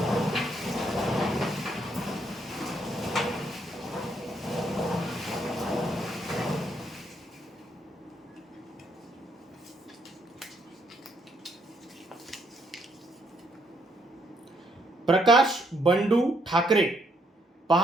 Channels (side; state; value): both; normal; correlation 0.73